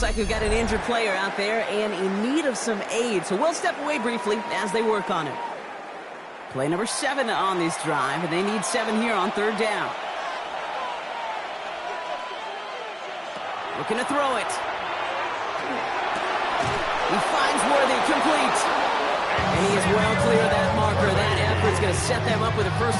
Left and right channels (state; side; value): identical; both; correlation 1.00